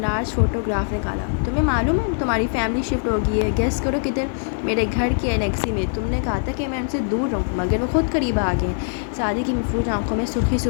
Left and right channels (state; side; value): silent; right; digital silence